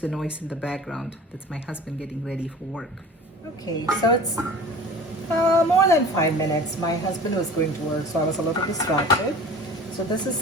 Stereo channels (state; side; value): normal; both; correlation 0.41